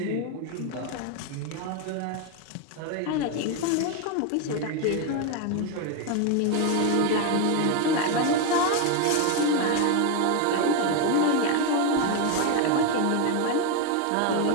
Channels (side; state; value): both; different; correlation 0.02